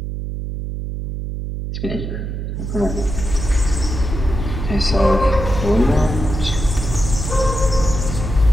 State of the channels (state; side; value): noise; right; hum, 5 dB below the sound